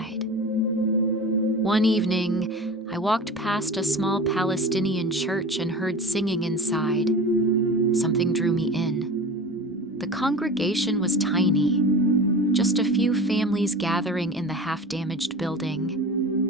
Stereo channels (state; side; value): normal; both; correlation 0.34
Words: One evening, I walked past a small Palestinian church and heard singing inside. Something drew me in. The congregation was tiny, just a few families gathering in the half-damaged